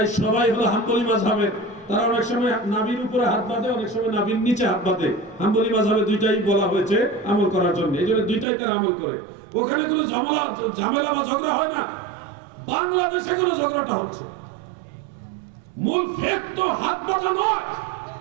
সবাই হলো হাম্বলি মাযহাবের। তারা অনেক সময় নাভির উপরে হাত বাঁধে, অনেক সময় নাভির নিচে হাত বাঁধে। হাম্বলি মাযহাবে দুইটাই বলা হয়েছে আমল করার জন্য, এই জন্য দুইটাই তারা আমল করে। ওখানে কোনো ঝামেলা বা ঝগড়া হয় না। বাংলাদেশে কোনো ঝগড়াটা হচ্ছে। মূল ফেক তো হাত বাঁধা নয়।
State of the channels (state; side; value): drops out; left; at 8.5 s